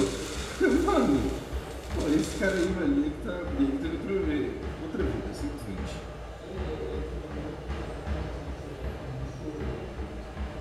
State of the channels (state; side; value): identical; both; correlation 1.00